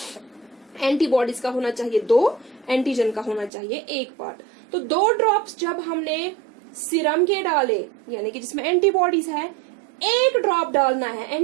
एंटीबॉडीज का होना चाहिए 2, एंटीजन का होना चाहिए 1 पार्ट। तो 2 ड्रॉप्स जब हमने सिरम के डाले, यानी कि जिसमें एंटीबॉडीज है, 1 ड्रॉप डालना है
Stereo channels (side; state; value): left; drops out; at 3.5 s